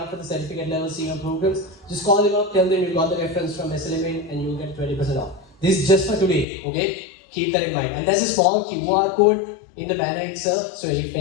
for the certificate level senior programs, just call them up, tell them you got the reference from SLMU and you'll get 20% off. This is just for today, okay? Keep that in mind. And there's a small QR code in the banner itself, so if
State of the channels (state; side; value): drops out; right; at 6.5 s